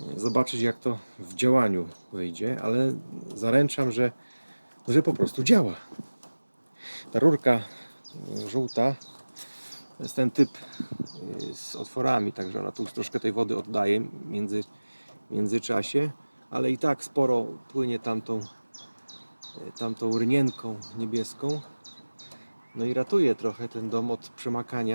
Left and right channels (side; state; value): both; inverted; correlation -1.00